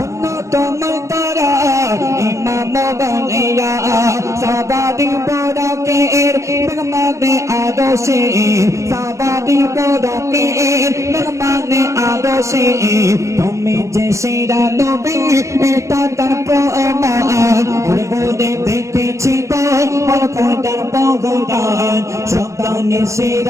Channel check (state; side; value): late; left; 0.15 ms